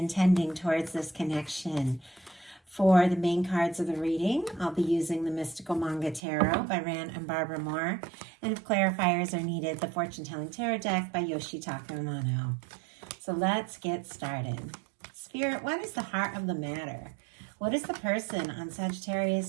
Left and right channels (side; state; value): left; drops out; at 6.2 s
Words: towards this connection. For the main cards of the reading, I'll be using the Mystical Manga Tarot by Ran and Barbara Moore, and if clarifiers are needed, the Fortune Telling Tarot deck by Yoshitaka Amano. So let's get started. Spirit, what is the heart of the matter? What is the person on